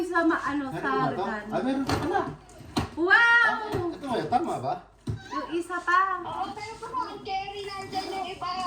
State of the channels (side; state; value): both; identical; correlation 1.00